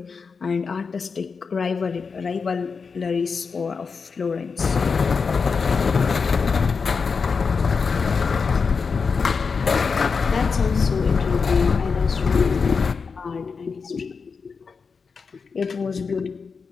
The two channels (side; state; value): right; quieter; 5.2 dB